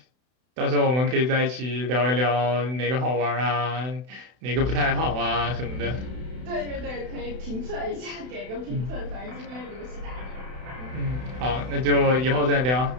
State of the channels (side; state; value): left; late; 32 ms